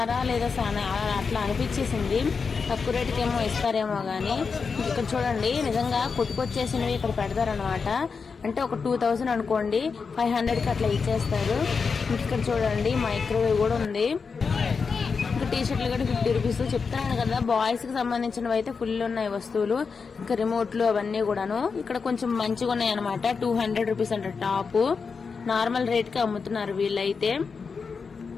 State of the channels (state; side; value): quieter; right; 5.3 dB